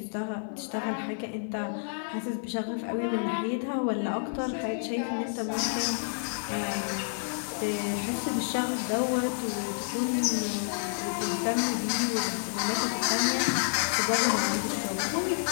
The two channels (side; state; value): right; silent; digital silence